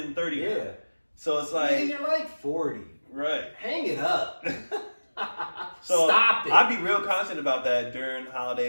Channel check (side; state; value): both; inverted; correlation -1.00